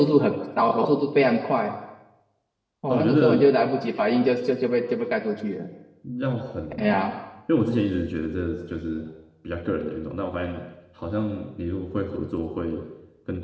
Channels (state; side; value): identical; both; correlation 1.00